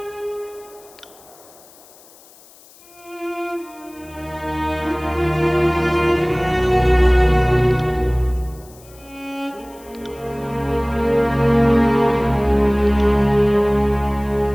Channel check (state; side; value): noise; left; hiss, 25 dB below the sound